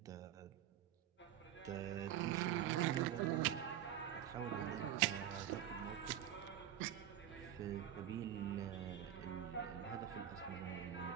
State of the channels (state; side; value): quieter; left; 10.8 dB